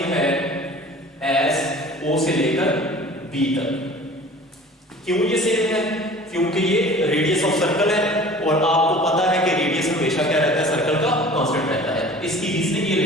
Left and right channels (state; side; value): normal; both; correlation 0.44